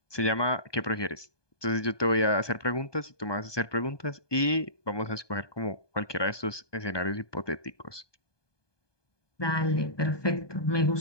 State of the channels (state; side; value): late; right; 1.2 ms